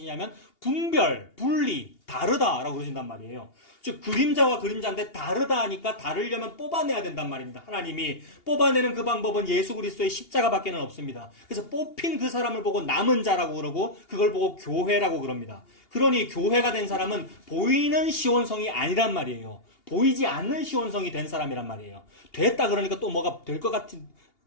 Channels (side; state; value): right; late; 2.8 ms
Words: 분별, 분리, 다르다라고 그러신단 말이에요. 즉 그림자와 그림자인데 다르다 하니까 다르려면 뽑아내야 된단 말입니다. 하나님이 뽑아내는 그 방법은 예수 그리스도의 십자가밖에는 없습니다. 그래서 뽑힌 그 사람을 보고 남은 자라고 그러고 그걸 보고 교회라고 그럽니다. 그러니 교회가 된 사람은 보이는 시온성이 아니란 말이에요. 보이지 않는 시온성이 된 사람이란 말이에요. 됐다 그러니까 또 뭐가 될 것 같은